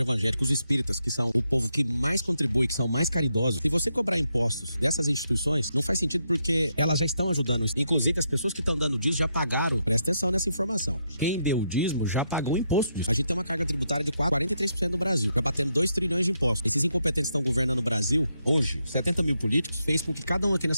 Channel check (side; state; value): both; inverted; correlation -0.81